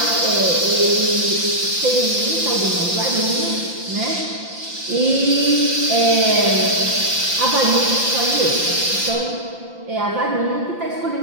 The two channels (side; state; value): left; late; 5.8 ms